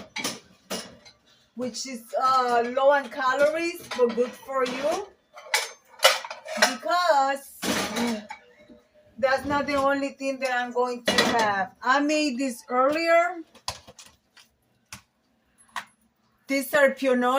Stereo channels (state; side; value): identical; both; correlation 1.00